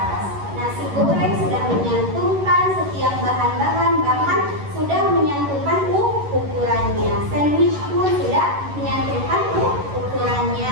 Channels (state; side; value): late; left; 11 ms